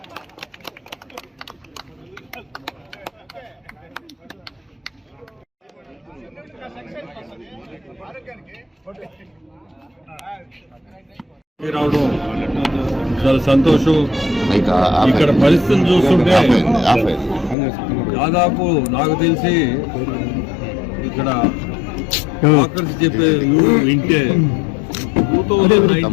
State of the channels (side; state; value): right; drops out; at 17.6 s